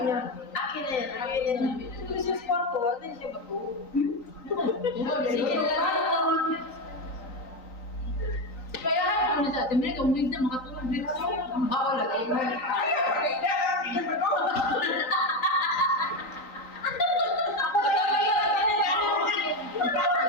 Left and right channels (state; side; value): late; right; 3.9 ms